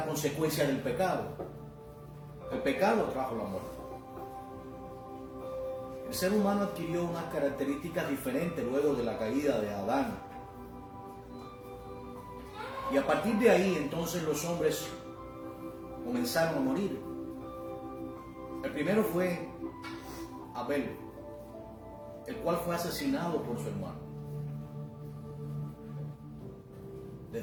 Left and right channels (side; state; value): both; identical; correlation 1.00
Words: consecuencia del pecado. El pecado trajo la muerte. El ser humano adquirió unas características diferentes luego de la caída de Adán. Y a partir de ahí, entonces, los hombres comenzaron a morir. El primero fue Abel, el cual fue asesinado por su hermano.